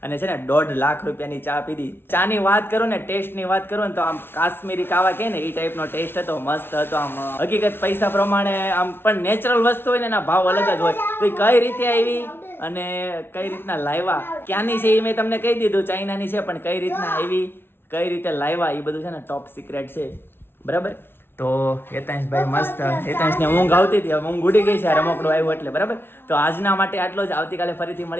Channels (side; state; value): right; late; 0.11 ms